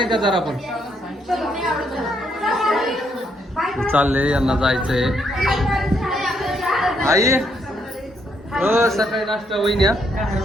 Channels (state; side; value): normal; both; correlation 0.74